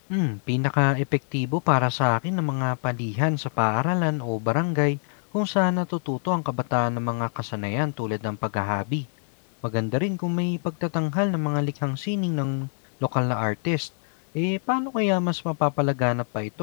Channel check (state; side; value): silent; right; digital silence